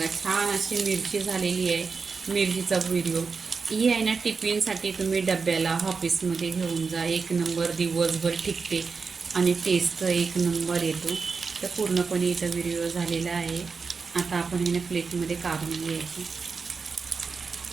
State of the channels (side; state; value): left; quieter; 4.9 dB